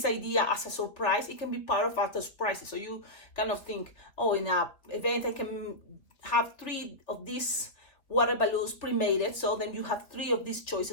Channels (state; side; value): late; right; 3.2 ms